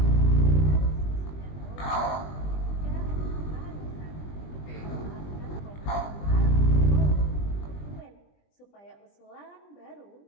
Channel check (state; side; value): late; right; 20 ms